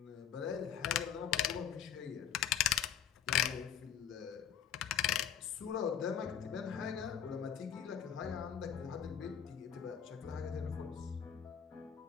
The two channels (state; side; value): quieter; right; 9.3 dB